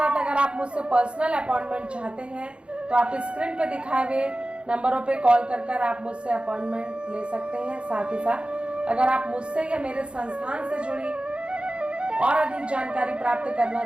अगर आप मुझसे पर्सनल अपॉइंटमेंट चाहते हैं तो आप स्क्रीन पे दिखाए हुए नंबरों पे कॉल कर आप मुझसे अपॉइंटमेंट ले सकते हैं। साथ ही साथ अगर आप मुझसे या मेरे संस्थान से जुड़ी और अधिक जानकारी प्राप्त करना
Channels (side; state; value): left; late; 0.057 ms